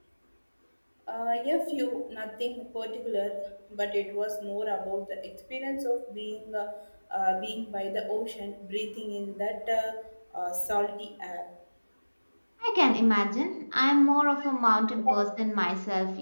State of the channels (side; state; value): both; inverted; correlation -1.00